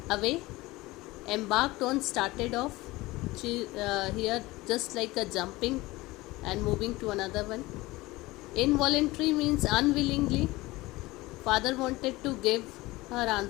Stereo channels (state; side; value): quieter; right; 20.2 dB